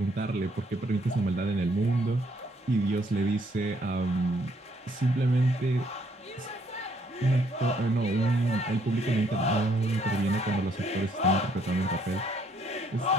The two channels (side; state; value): both; normal; correlation 0.68